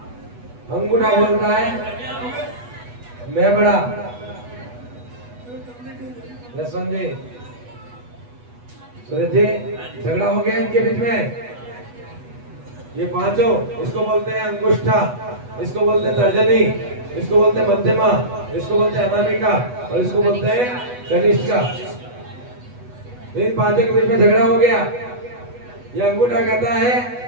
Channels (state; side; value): late; left; 8.2 ms